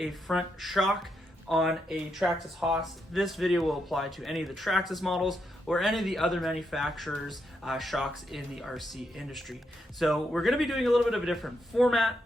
front shock on a Traxxas Haas. This video will apply to any of the Traxxas models or any of the other manufacturers' shocks in the RC industry. So we're going to be doing a little bit of a different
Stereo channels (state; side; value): normal; both; correlation 0.81